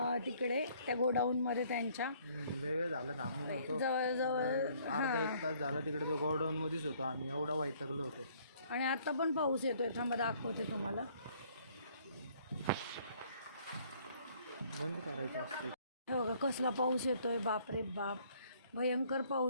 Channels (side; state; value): both; inverted; correlation -0.61